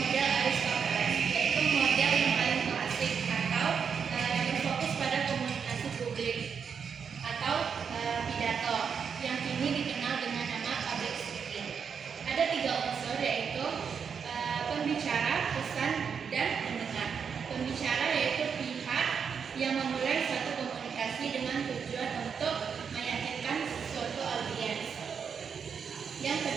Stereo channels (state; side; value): quieter; left; 6.6 dB